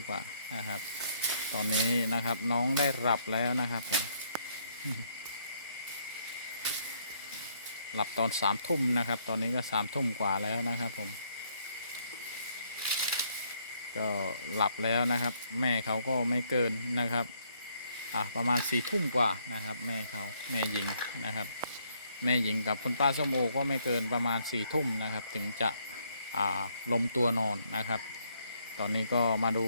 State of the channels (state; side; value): inverted; both; correlation -0.70